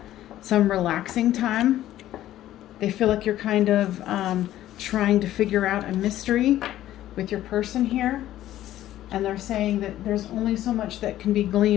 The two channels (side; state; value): right; quieter; 13.4 dB